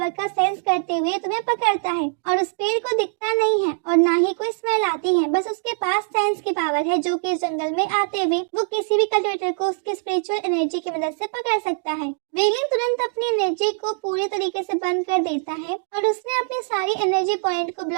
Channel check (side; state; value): left; silent; digital silence